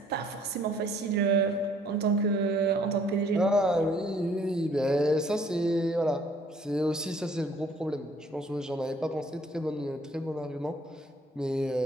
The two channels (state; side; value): normal; both; correlation 0.60